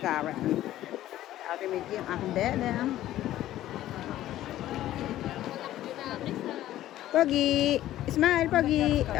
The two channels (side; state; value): right; quieter; 13.8 dB